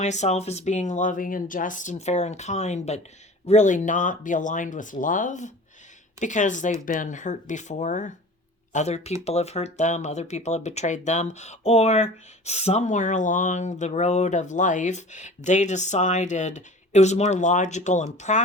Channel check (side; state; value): both; normal; correlation 0.41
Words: as being loving and just and fair and kind, but really not be aligned with love because they've been hurt before. Other people have hurt them, other people have betrayed them, or somewhere along the road of life, they decided it was more logical and